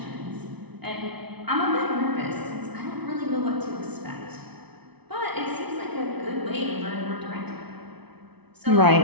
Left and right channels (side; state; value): left; late; 0.99 ms